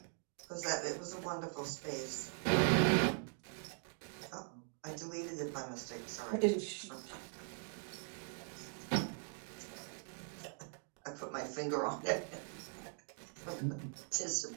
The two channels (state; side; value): silent; left; 50 dB below the other